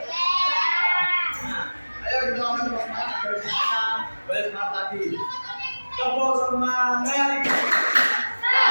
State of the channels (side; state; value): both; inverted; correlation -1.00